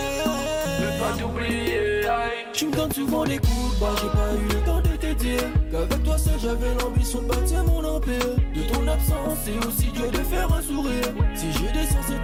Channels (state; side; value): identical; both; correlation 1.00